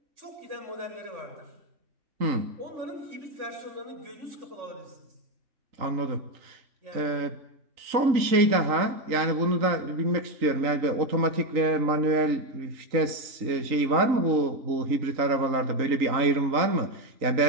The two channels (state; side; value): late; left; 3.8 ms